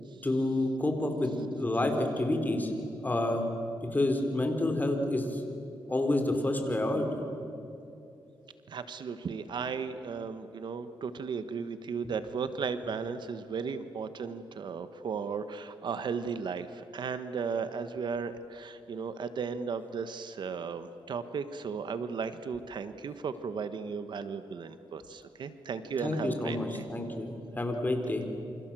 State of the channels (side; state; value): both; normal; correlation 0.77